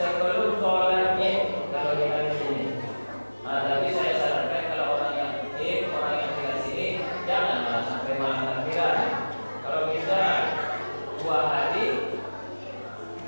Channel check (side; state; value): both; inverted; correlation -1.00